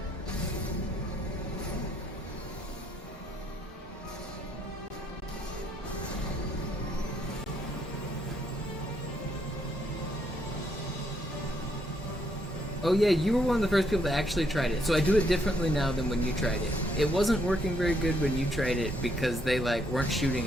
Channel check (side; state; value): both; normal; correlation 0.73